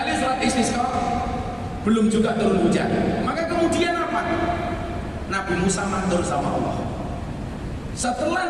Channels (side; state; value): both; identical; correlation 1.00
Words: sholat istisqa belum juga turun hujan. Maka kemudian apa? Nabi Musa matur sama Allah. Setelah